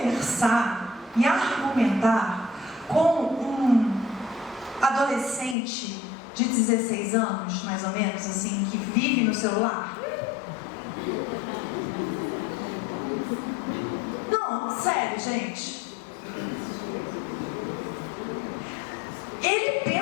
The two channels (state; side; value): drops out; right; at 5.6 s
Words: e argumentar com um adolescente de 16 anos, mais ou menos, assim, que vive no celular? Não, sério, gente. Ele